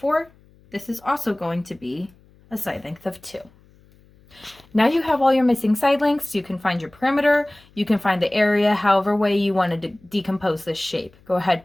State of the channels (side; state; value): left; noise; hum, 29 dB below the sound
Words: this is also going to be a side length of 2. Now you have all your missing side lengths. You can find your perimeter. You can find the area, however way you want to decompose this shape. Go ahead,